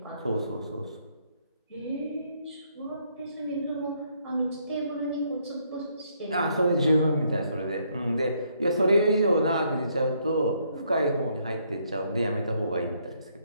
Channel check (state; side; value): inverted; both; correlation -0.71